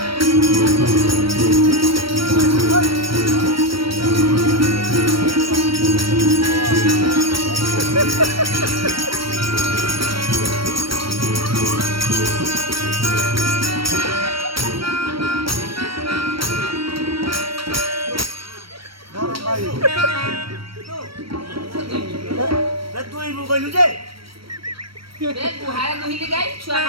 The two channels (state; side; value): late; left; 0.75 ms